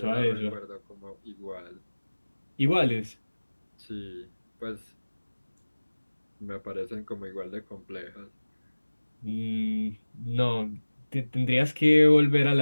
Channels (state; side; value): inverted; both; correlation -1.00